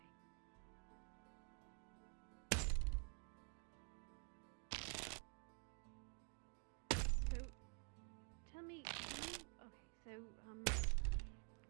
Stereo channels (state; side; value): quieter; left; 38.9 dB